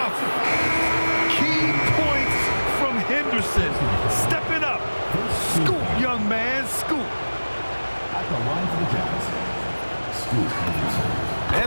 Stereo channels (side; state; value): both; inverted; correlation -1.00